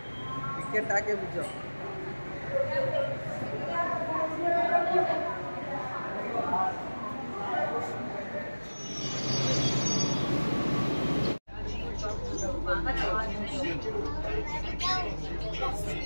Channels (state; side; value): inverted; both; correlation -1.00